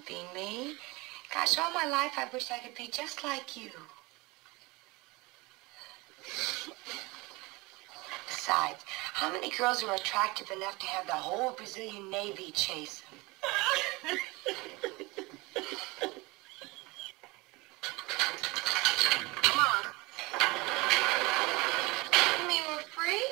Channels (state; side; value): quieter; left; 23.9 dB